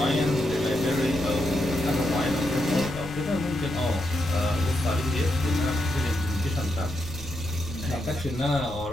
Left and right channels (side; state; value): left; noise; rumble, 14 dB below the sound